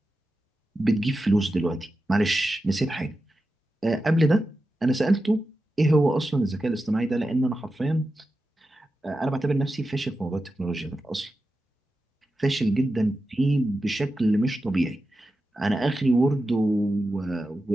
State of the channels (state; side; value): normal; both; correlation 0.91